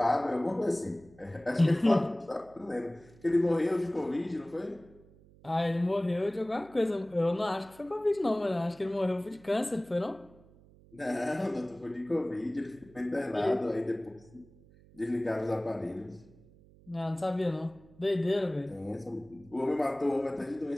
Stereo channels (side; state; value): right; noise; hum, 25 dB below the sound